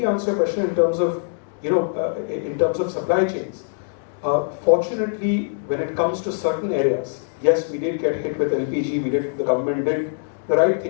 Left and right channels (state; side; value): silent; right; digital silence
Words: answer your question in terms of, in terms of supply chains, fortunately, when it comes to certain areas, yes, we did get hit with LPG. The government did the right